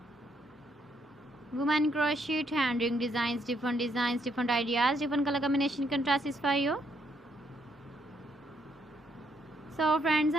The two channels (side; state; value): both; normal; correlation 0.73